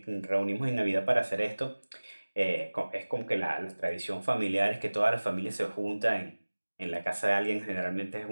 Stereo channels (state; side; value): inverted; both; correlation -1.00